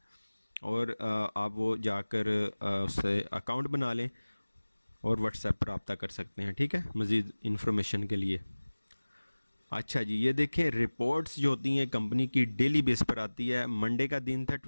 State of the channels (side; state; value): both; inverted; correlation -1.00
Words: और आप वो जाकर उससे अकाउंट बना लें और व्हाट्सएप पर रब्ता कर सकते हैं। ठीक है, मज़ीद इन्फॉर्मेशन के लिए। अच्छा जी, ये देखें रिपोर्ट्स जो होती हैं कंपनी की डेली बेस पर आती है। मंडे का दिन था